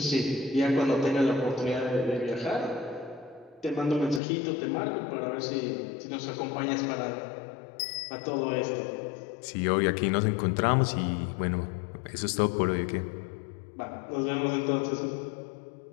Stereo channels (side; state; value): right; drops out; at 4.2 s